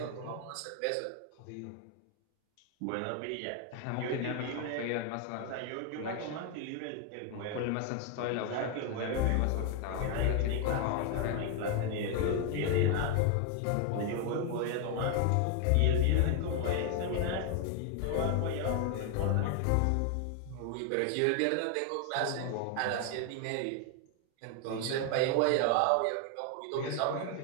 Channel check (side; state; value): both; different; correlation 0.01